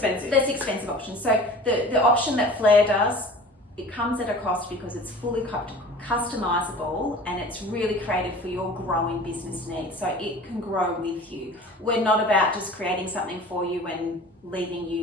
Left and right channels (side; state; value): both; normal; correlation 0.42